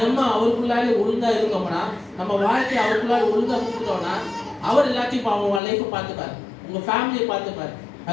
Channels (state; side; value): drops out; right; at 5.6 s